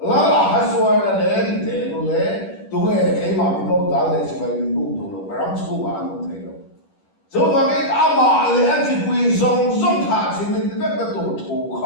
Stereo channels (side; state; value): right; late; 10 ms